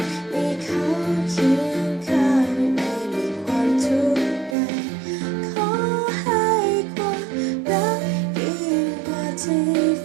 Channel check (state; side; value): drops out; left; at 4.5 s